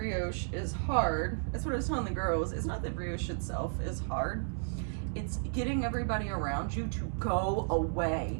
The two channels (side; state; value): left; silent; digital silence